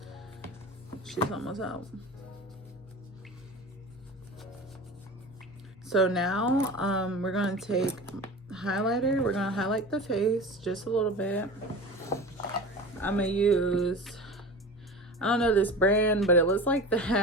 she's almost out. So now we're gonna take highlighter. We're gonna highlight the face just a little bit. I'm gonna use, I don't know this brand, but it looks like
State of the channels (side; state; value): both; normal; correlation 0.33